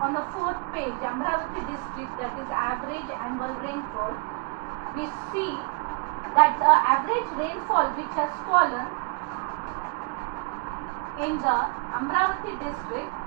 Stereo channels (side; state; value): left; quieter; 30.4 dB